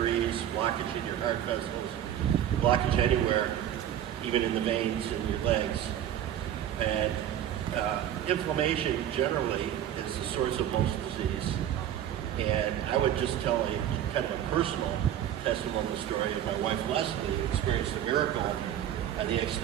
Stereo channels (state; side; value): quieter; left; 10.8 dB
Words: blockage in your heart vessels, blockage anywhere, even in the veins in your legs. And inflammation generally is the source of most disease. And I would just tell you kind of a personal testimonial story of my wife Leslie, who experienced a miracle on the